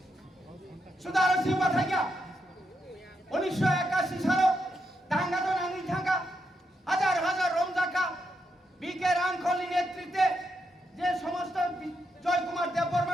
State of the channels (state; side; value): normal; both; correlation 0.82